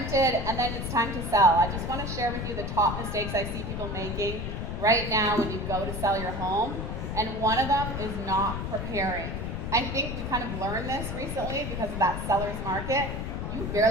and then it's time to sell. I just want to share with you the top mistakes I see people making right now when you go to sell your home, and one of them is not preparing. I think we kind of learned this recently because of that seller's market. You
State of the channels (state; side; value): noise; left; rumble, 4 dB below the sound